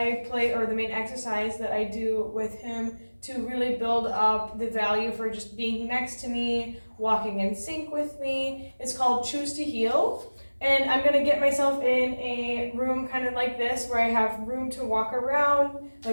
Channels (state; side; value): inverted; both; correlation -1.00